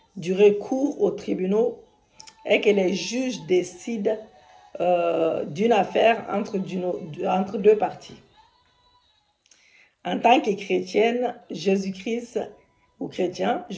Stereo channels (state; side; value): identical; both; correlation 1.00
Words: du recours aux tribunaux est que les juges décident d'une affaire entre deux parties. En tant que chrétienne, Jésus-Christ